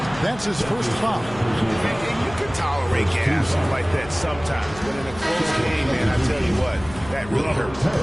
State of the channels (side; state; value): left; noise; hum, 16 dB below the sound